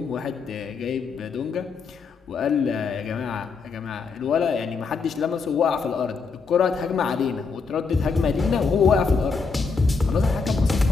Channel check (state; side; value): quieter; right; 4.9 dB